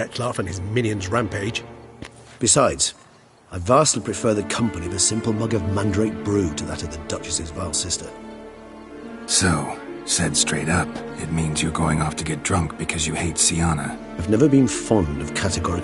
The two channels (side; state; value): both; identical; correlation 1.00